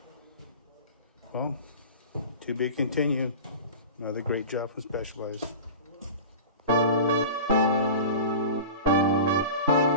Well, to be continued. Another great job from Specialized.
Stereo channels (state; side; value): inverted; both; correlation -0.34